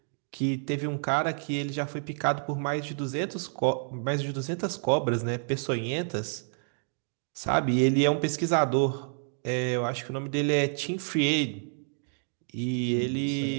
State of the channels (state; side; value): silent; left; digital silence